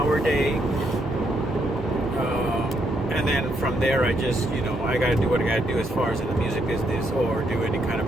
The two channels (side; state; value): both; normal; correlation 0.76